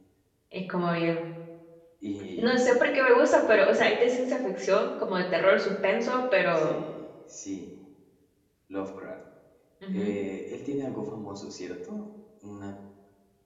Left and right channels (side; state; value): both; identical; correlation 1.00